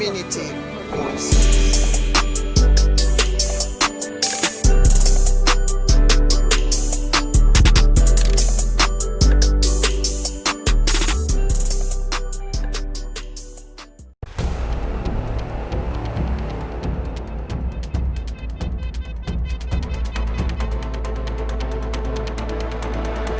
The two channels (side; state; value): both; identical; correlation 1.00